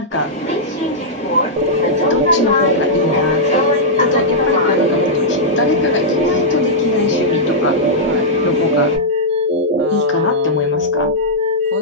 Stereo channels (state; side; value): normal; both; correlation -0.10